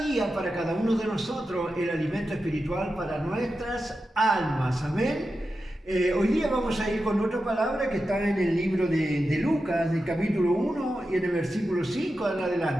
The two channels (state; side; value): normal; both; correlation 0.91